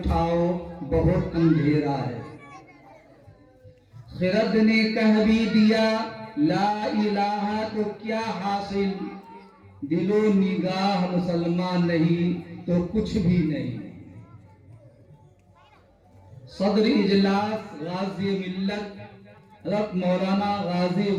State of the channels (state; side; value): identical; both; correlation 1.00